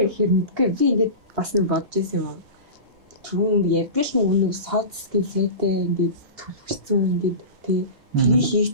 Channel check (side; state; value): left; late; 2.8 ms